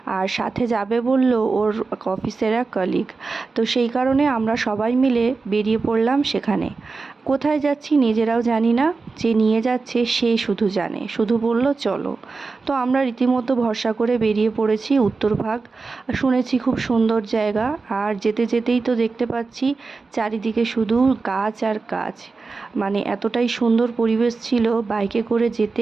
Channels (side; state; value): left; quieter; 4.1 dB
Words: আর সাথে যাবে বলল ওর অফিসের এক কলিগ। তো সেই কারণে আমরা সবাই মিলে বেরিয়ে পড়লাম সেখানে। কোথায় যাচ্ছি নিজেরাও জানি না, যে নিয়ে যাচ্ছে সে শুধু জানে, শুধু বলল চলো। তো আমরা রীতিমতো ভরসা করে বেরিয়ে পড়েছি উত্তরভাগ। শুনেছি খুব সুন্দর জায়গা, আর যেতে যেতেই তো দেখতে পাচ্ছি চারিদিকে শুধু গাছ আর গাছ। মানে এতটাই সুন্দর পরিবেশ ছিল, বাইকে করে যেতে